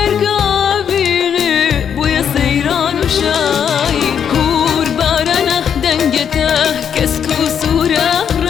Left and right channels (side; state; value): right; quieter; 8.0 dB